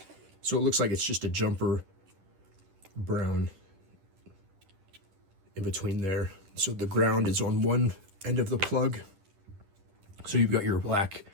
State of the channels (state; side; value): late; left; 10 ms